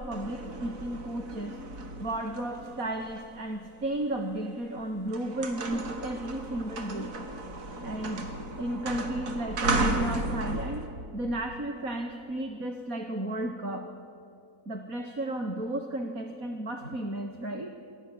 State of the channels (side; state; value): left; late; 4.0 ms